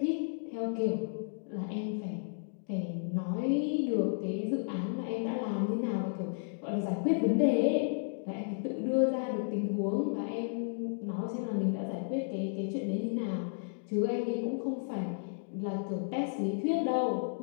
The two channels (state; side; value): silent; right; digital silence